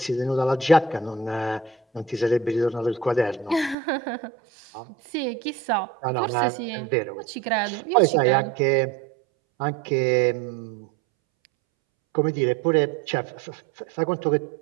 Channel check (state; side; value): drops out; left; at 3.8 s